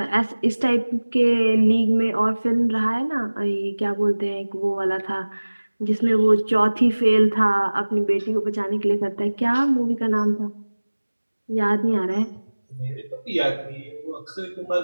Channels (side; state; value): both; inverted; correlation -1.00